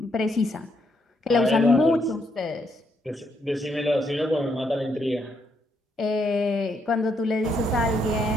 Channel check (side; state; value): both; normal; correlation 0.75